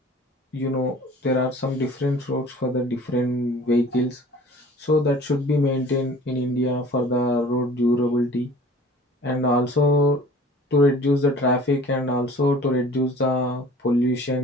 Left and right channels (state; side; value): normal; both; correlation 0.47